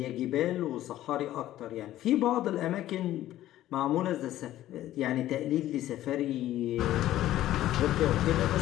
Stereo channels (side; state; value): right; quieter; 13.8 dB